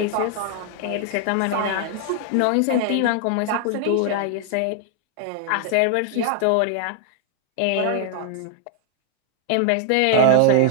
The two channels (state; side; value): different; both; correlation 0.00